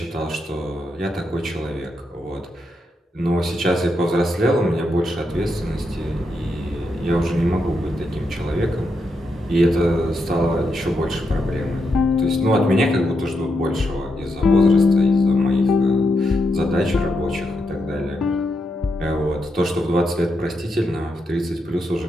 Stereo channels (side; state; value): both; normal; correlation 0.83